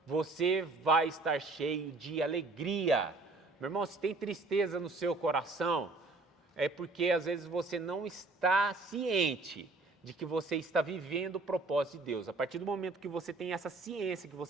você vai estar cheio de alegria. Meu irmão, se tem tristeza no seu coração, é porque às vezes você não está ciente de que você está vivendo o propósito de Deus. A partir do momento que você tem essa ciência, que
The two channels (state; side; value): quieter; left; 3.4 dB